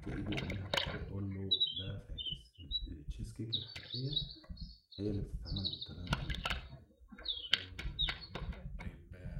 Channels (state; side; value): identical; both; correlation 1.00